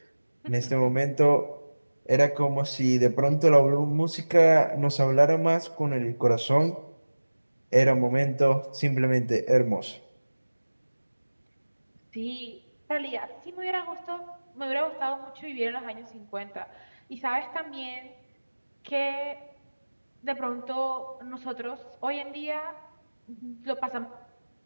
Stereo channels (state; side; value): inverted; both; correlation -1.00